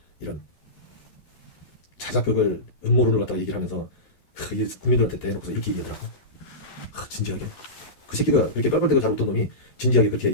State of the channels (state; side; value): late; right; 11 ms